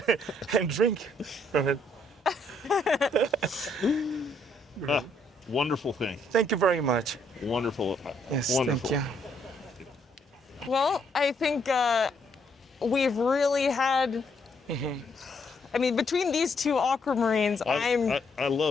and drink from it. Wonderful thing. Thank you very much. Wonderful. Yes, Wonderful. thank you. Well, I think we've really had. I mean, between these two aquamarines, I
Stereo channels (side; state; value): both; normal; correlation 0.71